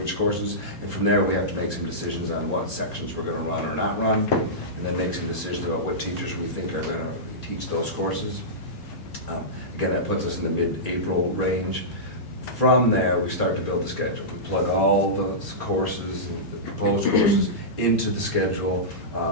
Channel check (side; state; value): both; normal; correlation -0.15